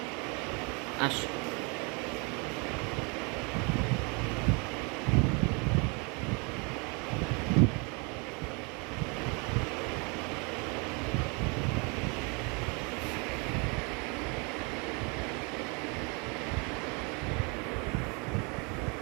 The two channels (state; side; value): quieter; left; 31.8 dB